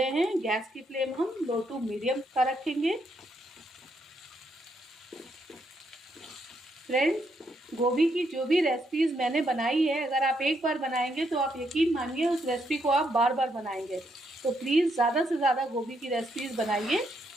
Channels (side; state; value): both; normal; correlation 0.76